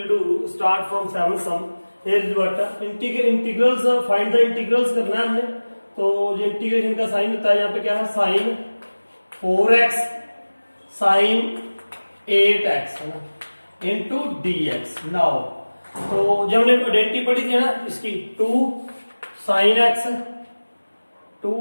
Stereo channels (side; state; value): both; inverted; correlation -1.00